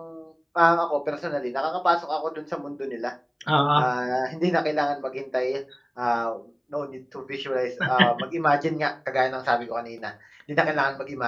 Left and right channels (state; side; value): identical; both; correlation 1.00